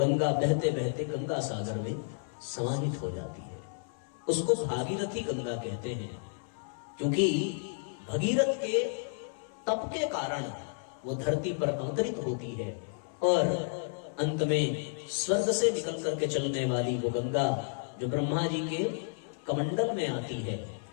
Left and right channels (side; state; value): right; silent; 57 dB below the other